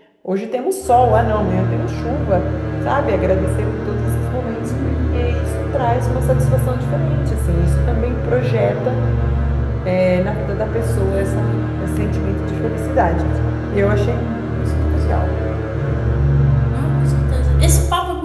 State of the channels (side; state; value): both; identical; correlation 1.00